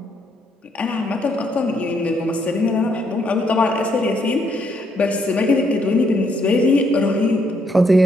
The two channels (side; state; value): both; normal; correlation 0.73